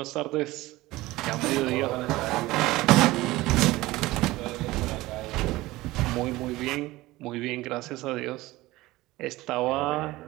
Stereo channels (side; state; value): left; quieter; 18.8 dB